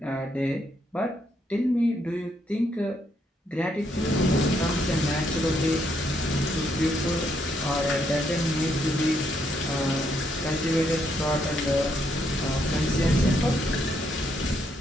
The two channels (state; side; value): normal; both; correlation 0.75